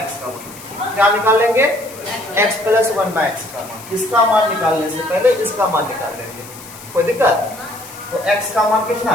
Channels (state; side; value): noise; left; hiss, 17 dB below the sound